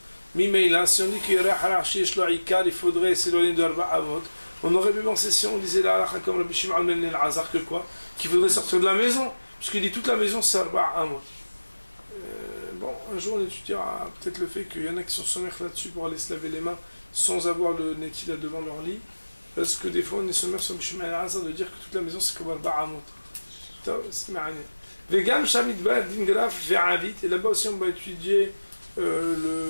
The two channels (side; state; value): both; inverted; correlation -1.00